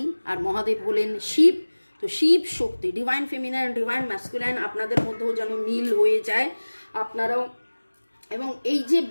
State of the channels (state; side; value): inverted; both; correlation -1.00